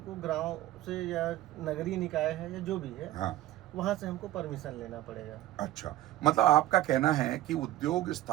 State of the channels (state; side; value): quieter; left; 14.8 dB